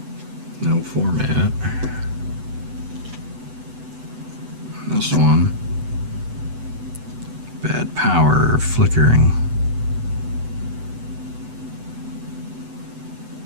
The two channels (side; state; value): left; late; 8.0 ms